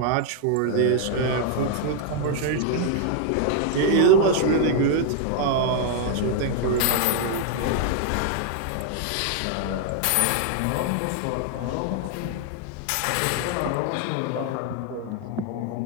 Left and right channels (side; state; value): both; different; correlation 0.00